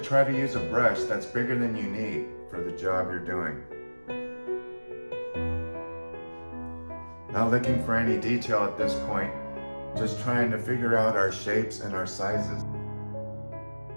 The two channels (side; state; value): both; inverted; correlation -1.00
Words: to use a brush that's bigger than you need for the job you're doing. Not looking for any detail at this point, just trying to figure out our shapes and our sizes.